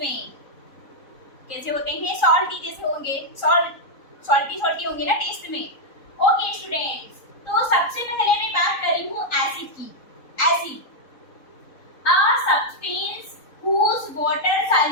कैसे होते हैं? सॉल्टी जैसे होंगे, सॉल्टी होंगे ना टेस्ट में। ओके स्टूडेंट्स, तो सबसे पहले मैं बात कर रही हूँ एसिड की। Acid a substance whose water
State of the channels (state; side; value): late; right; 3.9 ms